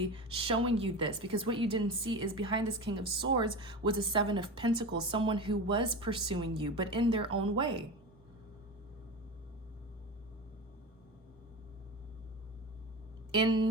showing you this, because what you didn't see is behind this King of Swords was a Seven of Pentacles, someone who was pursuing you, but in their own way.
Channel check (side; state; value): both; normal; correlation 0.26